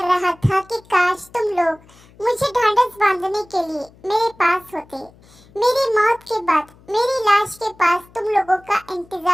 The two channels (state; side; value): noise; left; hum, 27 dB below the sound